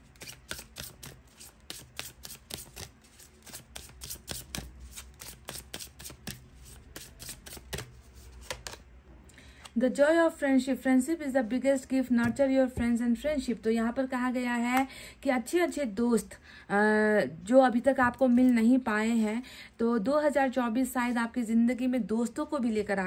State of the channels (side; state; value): both; identical; correlation 1.00